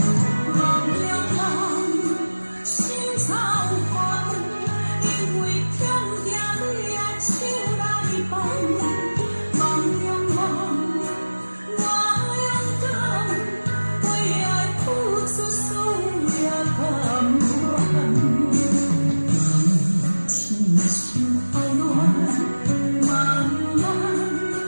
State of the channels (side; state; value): both; inverted; correlation -1.00